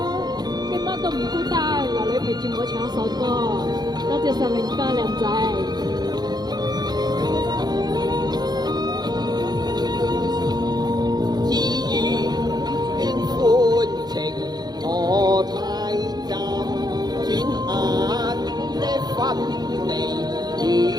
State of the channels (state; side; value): late; left; 0.20 ms